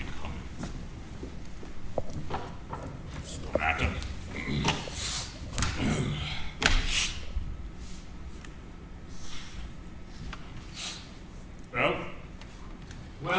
coming. It's no matter. Well?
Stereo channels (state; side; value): identical; both; correlation 1.00